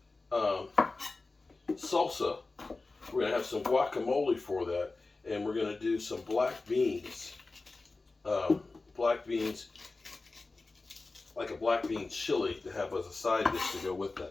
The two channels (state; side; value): quieter; right; 3.5 dB